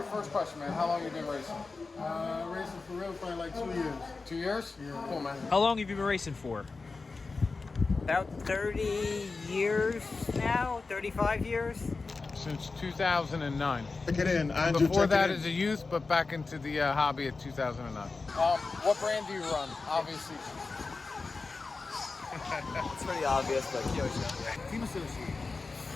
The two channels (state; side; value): quieter; right; 4.0 dB